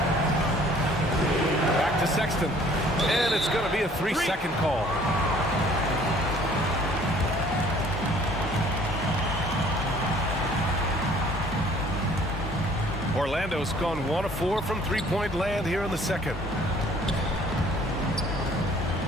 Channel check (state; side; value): normal; both; correlation 0.56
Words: Back to Sexton. And it's going to be a 3-second call. Orlando's gone 1 of 4 from three-point land here in the second.